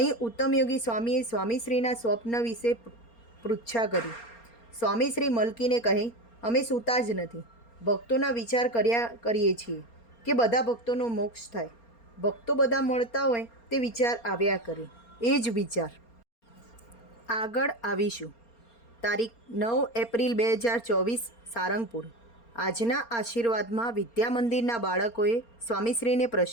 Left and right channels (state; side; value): late; right; 4.3 ms